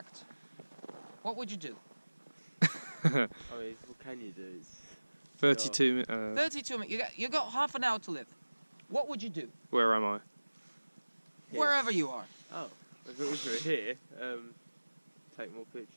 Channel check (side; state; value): both; inverted; correlation -1.00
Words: what would you do? I mean, what can you do? 32 minutes. 32 minutes. You got half an hour to live. What would you do? Where am I? Here. Wherever you are. Oh, if it was here, take more